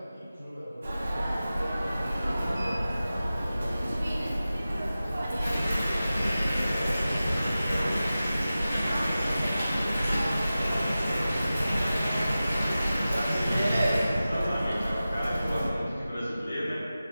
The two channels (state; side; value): inverted; both; correlation -0.95